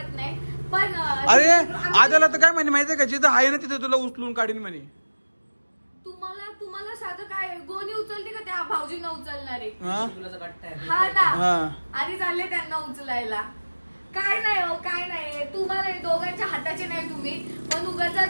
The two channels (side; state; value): both; inverted; correlation -1.00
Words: नाही. पण अरे आद्याला तर काय म्हणे माहितीये का, जिथं आहे ना तिथे तुला उचलून काढीन म्हणे. तुम्हाला साधं काय गोणी उचलते का त्या भाऊजींना उचलणारे? हा ना, आधी चालले त्यांना उचलायला. काय नाही हो, काय नाही. तुम्हाला दोघांच्या हाताचे नाही तुम्ही, पण